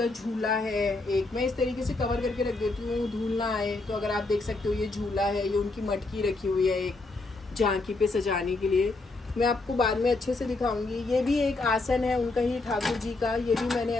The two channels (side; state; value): right; quieter; 3.3 dB